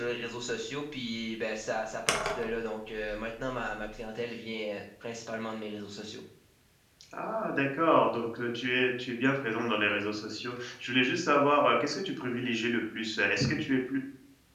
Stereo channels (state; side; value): identical; both; correlation 1.00